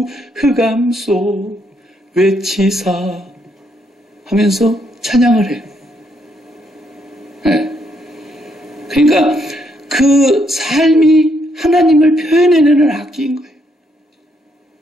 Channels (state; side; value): normal; both; correlation 0.74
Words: 흑암 속 외치사 하면서 찬양을 해요. 네. 그러니까 그 삶이 하나님을 표현해내는 악기인 거예요.